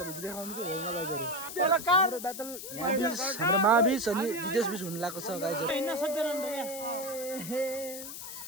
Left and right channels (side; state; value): left; noise; hiss, 9 dB below the sound